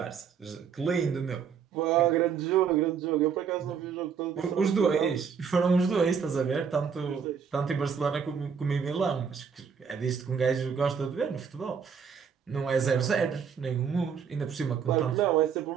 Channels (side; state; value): left; quieter; 6.7 dB